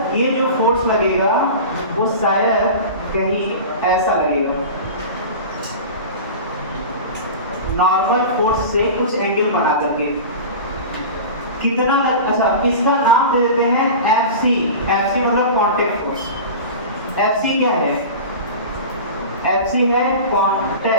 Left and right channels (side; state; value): both; inverted; correlation -0.32